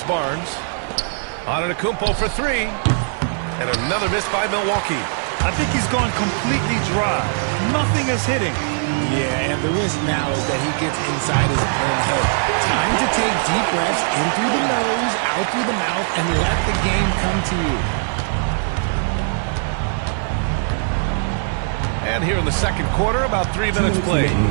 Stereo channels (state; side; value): silent; left; 55 dB below the other